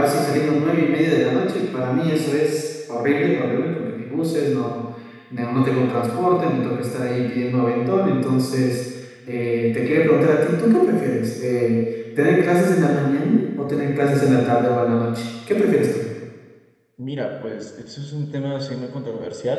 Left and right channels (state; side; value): identical; both; correlation 1.00